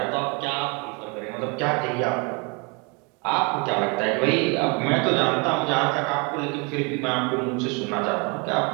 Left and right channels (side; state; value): left; quieter; 31.6 dB